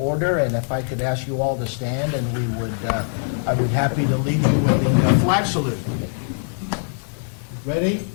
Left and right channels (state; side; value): silent; right; digital silence